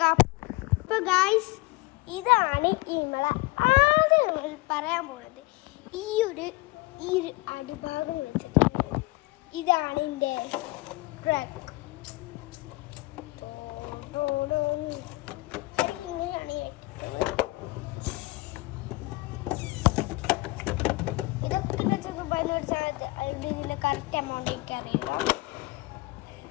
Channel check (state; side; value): quieter; right; 22.4 dB